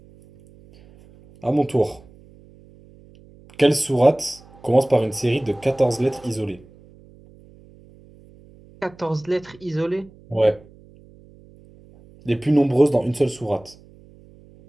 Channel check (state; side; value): noise; right; hum, 25 dB below the sound